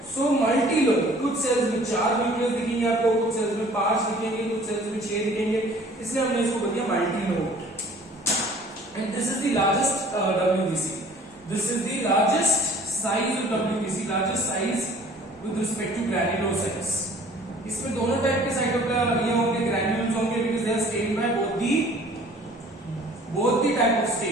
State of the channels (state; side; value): normal; both; correlation 0.52